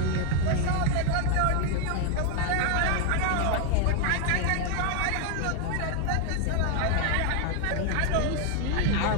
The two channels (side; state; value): both; different; correlation 0.01